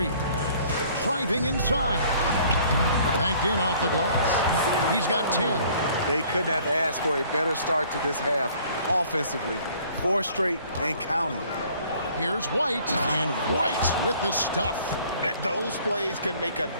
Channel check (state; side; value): inverted; both; correlation -0.56